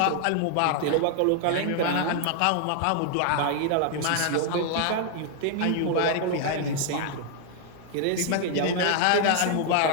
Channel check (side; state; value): both; different; correlation 0.00